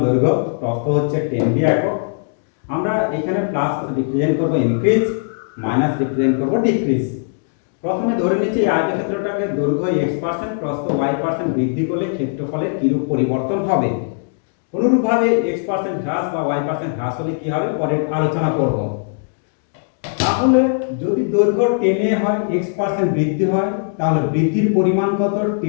দৈর্ঘ্য, প্রস্থ হচ্ছে 10 একক। আমরা এখানে প্লাস রিপ্রেজেন্ট করব ইনক্রিজ, মাইনাস রিপ্রেজেন্ট করব ডিক্রিজ। প্রথমে ধরে নিচ্ছি এই আয়তক্ষেত্রটাকে দৈর্ঘ্য x%, প্রস্থ y% বৃদ্ধি করলে ক্ষেত্রফলের কিরূপ পরিবর্তন হবে। অনুরূপভাবে x% হ্রাস বা y% হ্রাস হলে কি হবে পরে আলোচনা করব। তাহলে যদি দৈর্ঘ্য 10 হয়, x% বৃদ্ধি হয়, তাহলে বৃদ্ধির পরিমাণ কত?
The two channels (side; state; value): right; silent; digital silence